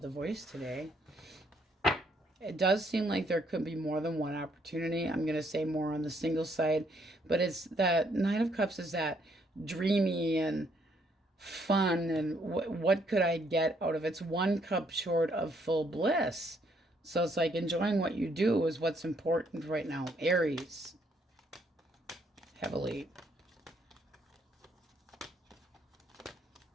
the voice today. It does seem like there could be more than one opportunity. I'm going to say more on the single side. But it's that Nine of Cups is that dreamy and fun. And what could I get out of it? It's one cup short of full bliss. So it's like enjoying what you do is what's important right now. Aries. Heavily.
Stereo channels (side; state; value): both; normal; correlation 0.70